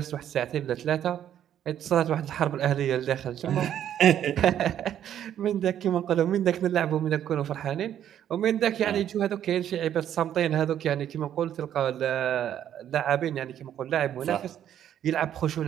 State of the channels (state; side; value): quieter; left; 10.4 dB